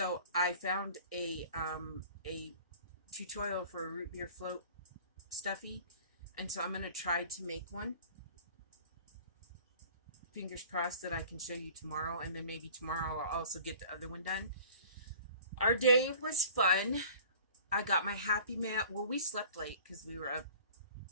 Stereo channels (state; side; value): inverted; both; correlation -0.47